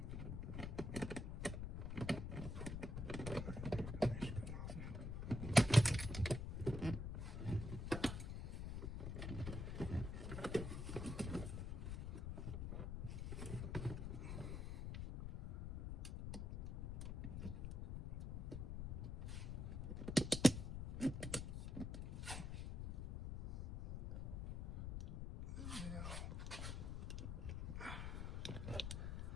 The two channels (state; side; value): noise; left; rumble, 4 dB below the sound